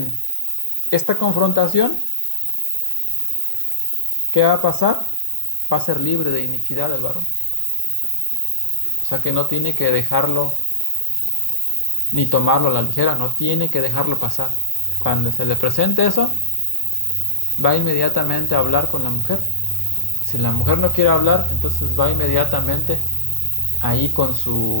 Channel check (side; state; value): right; late; 1.2 ms